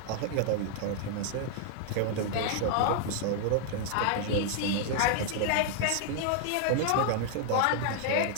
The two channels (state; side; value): different; both; correlation 0.00